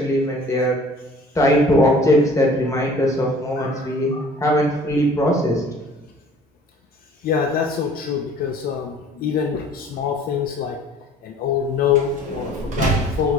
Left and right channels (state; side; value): normal; both; correlation 0.50